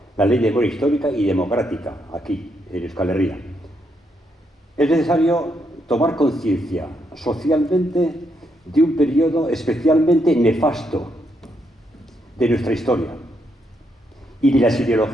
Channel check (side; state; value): both; normal; correlation 0.78